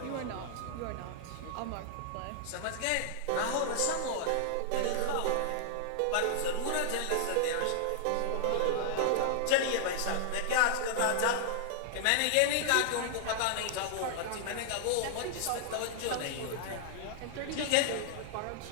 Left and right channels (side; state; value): both; different; correlation 0.00